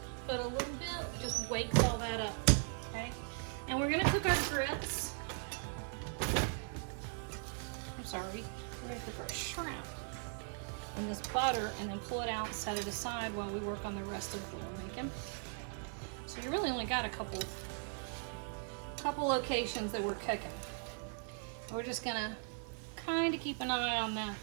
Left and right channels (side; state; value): left; silent; 52 dB below the other